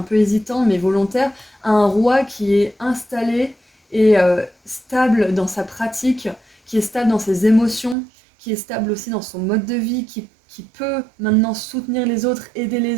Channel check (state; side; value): drops out; left; at 8.0 s